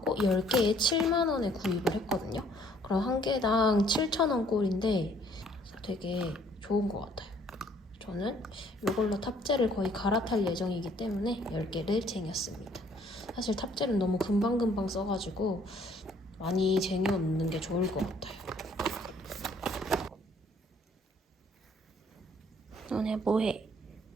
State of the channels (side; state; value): both; normal; correlation 0.61